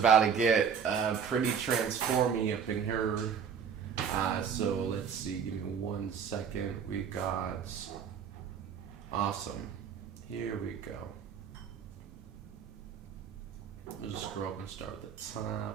to get pretty transformy up in here. So let's see, give me 1 second. We got, awesome. Here we go. We'll just scroll up and start at the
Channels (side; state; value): left; quieter; 7.2 dB